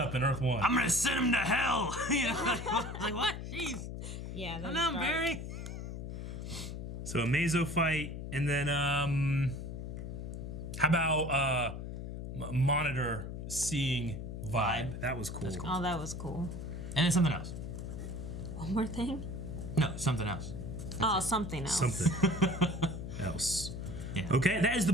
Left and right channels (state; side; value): noise; left; hum, 7 dB below the sound